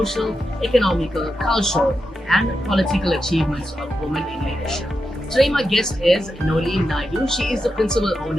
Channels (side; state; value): both; normal; correlation 0.88